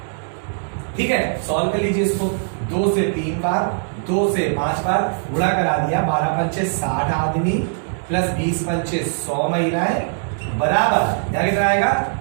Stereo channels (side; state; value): left; silent; digital silence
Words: ठीक है, सॉल्व कर लीजिए इसको। 2 से 3 बार, 2 से 5 बार गुणा करा दिया। 12 पंचे 60 आदमी प्लस 20 पंचे 100 महिलाएं बराबर यहां कितना आएगा?